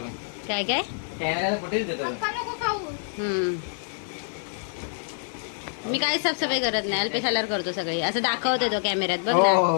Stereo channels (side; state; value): right; silent; 55 dB below the other